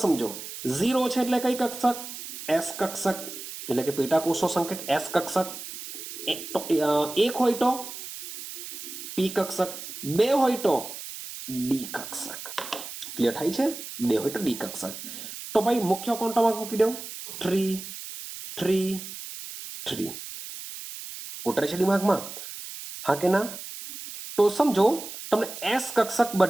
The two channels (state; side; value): noise; right; hiss, 10 dB below the sound